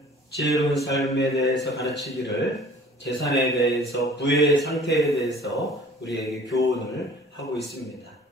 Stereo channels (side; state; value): both; normal; correlation 0.50